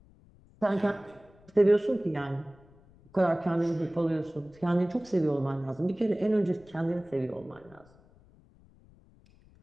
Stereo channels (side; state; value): left; noise; rumble, 27 dB below the sound